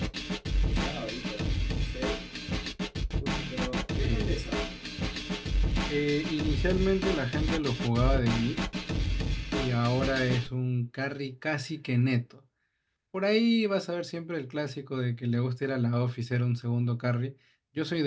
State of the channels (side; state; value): both; identical; correlation 1.00